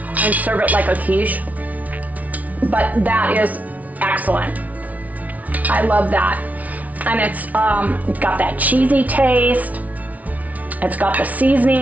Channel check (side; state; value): left; late; 0.071 ms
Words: serve it like a quiche. But that is excellent. I love that. And it's got that cheesy taste. It's got the